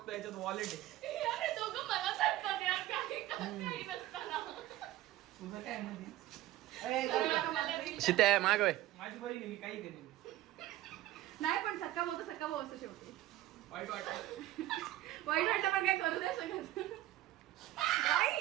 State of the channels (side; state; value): left; quieter; 15.1 dB